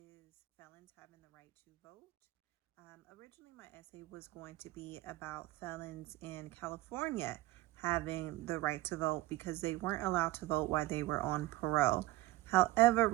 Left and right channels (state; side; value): quieter; left; 17.6 dB